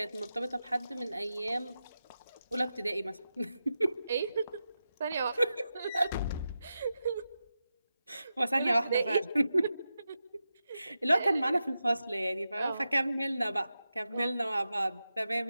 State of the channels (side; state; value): both; inverted; correlation -0.90